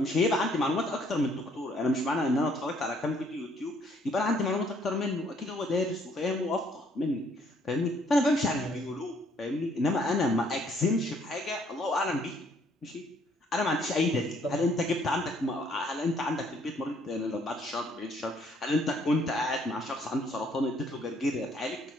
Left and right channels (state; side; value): normal; both; correlation 0.65